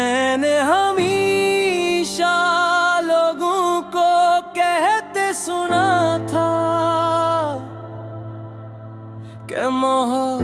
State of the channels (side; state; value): both; identical; correlation 1.00